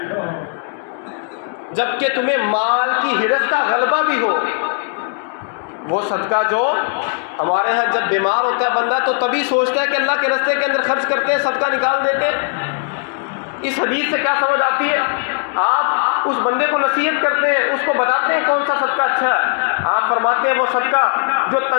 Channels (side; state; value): right; silent; 58 dB below the other